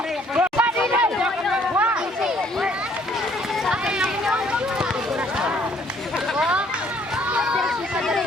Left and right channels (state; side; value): normal; both; correlation 0.63